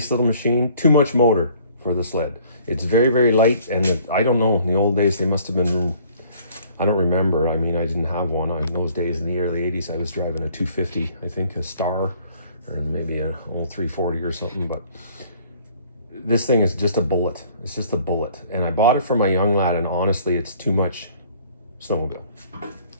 little machine, too much motor for the sled. It's very, very light, and I don't know, in the old days they must have been, I don't remember. I mean, I didn't have one. In those days in the early 80s, I was driving a 250, I think, a Star, or maybe an old 340 or something, but this thing is just a bullet. It's just a bullet. And I bought it for my young lad, and honestly, it's too much snowmobile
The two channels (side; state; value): both; inverted; correlation -0.57